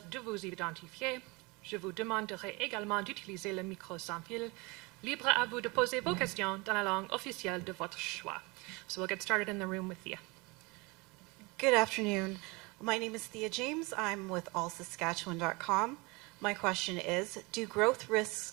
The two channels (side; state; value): left; quieter; 26.2 dB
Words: de vous identifier. Je vous demanderai également d'utiliser le micro sans fil. Libre à vous de poser vos questions dans la langue officielle de votre choix. So we'll get started in the room with Thea. Good afternoon. My name is Thea James. I'm with allsaskatchewan.com. My question is, do growth